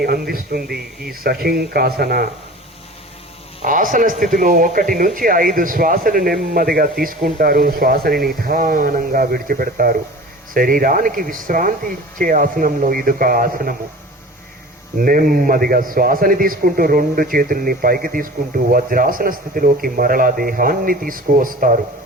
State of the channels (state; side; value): normal; both; correlation 0.40